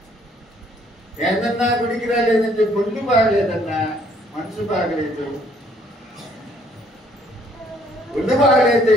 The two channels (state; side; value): normal; both; correlation 0.64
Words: ఏందన్నా గుడికి రాలేదంటే ఒళ్ళు బాగలేదన్నా, మనసు బాగలేదు. ఒళ్ళు బాగలేదు